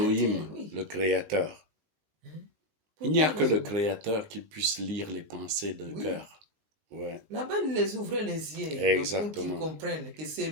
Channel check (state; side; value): late; left; 19 ms